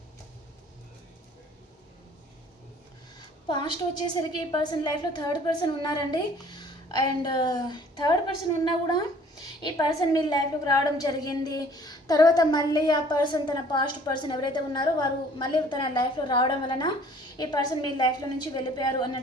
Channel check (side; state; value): both; normal; correlation 0.54